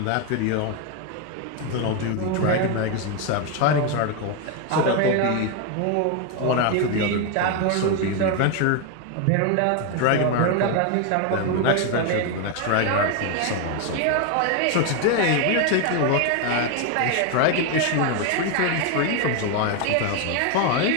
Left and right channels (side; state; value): both; different; correlation 0.01